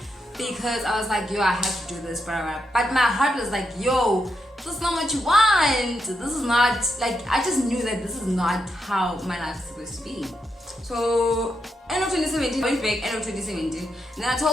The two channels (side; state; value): both; normal; correlation 0.83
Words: because I was like, yo, I have to do this, but my heart was like, yo, this is not what you want. This is not, like, I just knew that this is not how my life is supposed to be. So end of 2017, I went back end of 2017, and then I